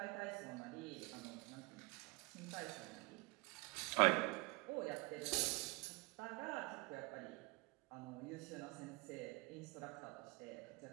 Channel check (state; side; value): quieter; left; 26.3 dB